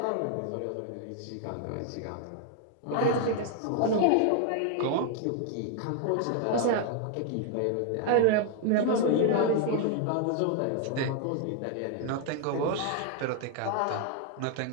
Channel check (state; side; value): different; both; correlation 0.00